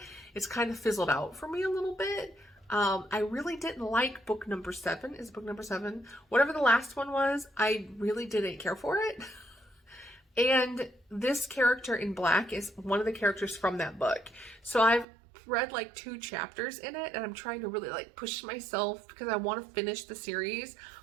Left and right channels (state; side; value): drops out; left; at 15.1 s